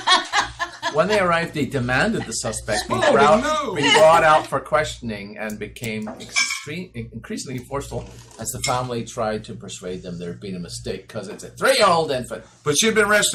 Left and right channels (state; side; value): identical; both; correlation 1.00